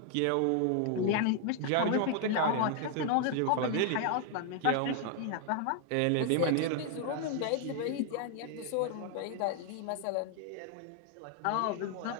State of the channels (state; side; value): different; both; correlation 0.00